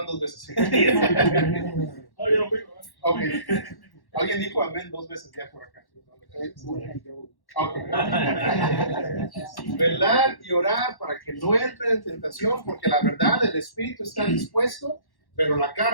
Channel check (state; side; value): late; right; 1.1 ms